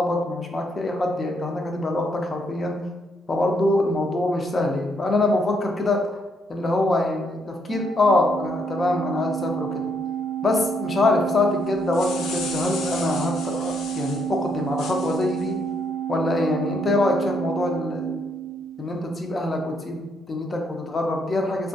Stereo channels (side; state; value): both; normal; correlation 0.73